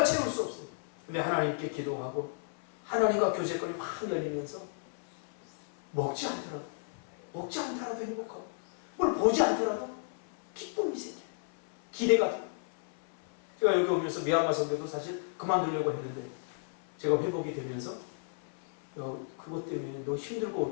채울 수 없어요. 근데 하나님께 기도하고 하나님과 교제권이 확 열리면서 먹지 않더라도 행복하고 뭘 보지 않더라도 기쁨이 생겨요. 기대가 돼요. 제가 여기 오면서 미얀마 선교도 사실 그만두려고 했는데 제가 회복이 되면서 그것 때문에 너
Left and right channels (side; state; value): right; silent; 56 dB below the other